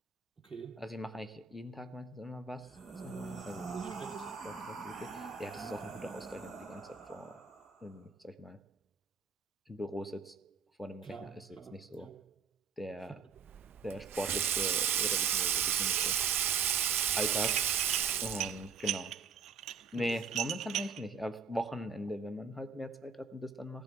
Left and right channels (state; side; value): quieter; left; 5.9 dB